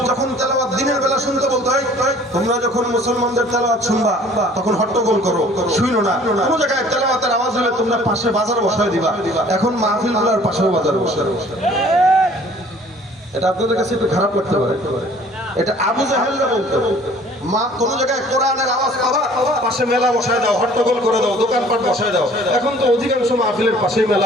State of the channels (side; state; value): both; normal; correlation 0.53